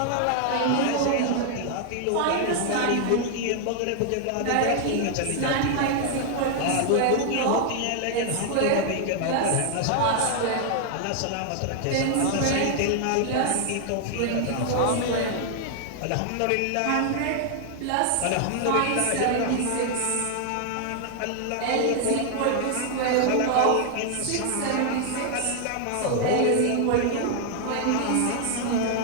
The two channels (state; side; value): different; both; correlation 0.00